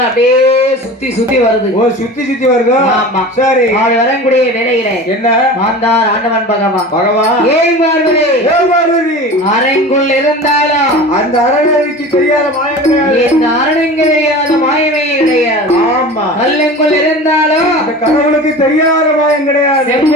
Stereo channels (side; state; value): both; normal; correlation 0.35